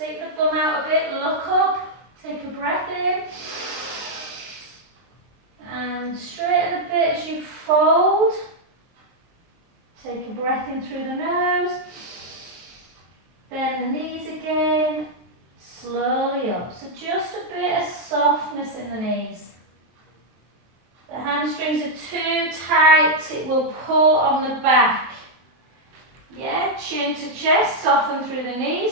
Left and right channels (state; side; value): late; left; 23 ms